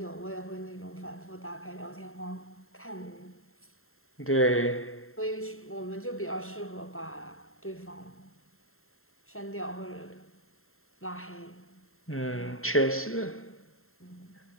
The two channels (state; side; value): late; right; 0.62 ms